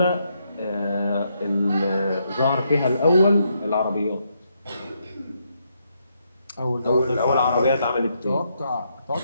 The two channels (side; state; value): both; inverted; correlation -0.77